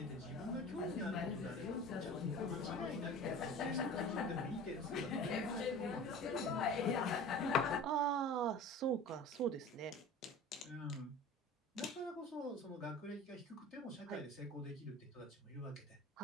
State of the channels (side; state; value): both; normal; correlation 0.38